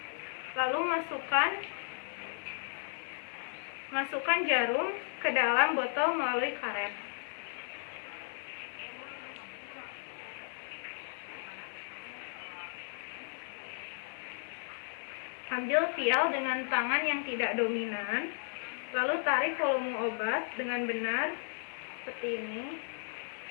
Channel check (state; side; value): silent; right; 54 dB below the other